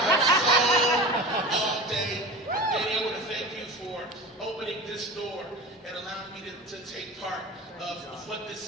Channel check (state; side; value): normal; both; correlation 0.32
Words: soul all day. Danny, I want to thank you for opening this door and allowing me to take part of what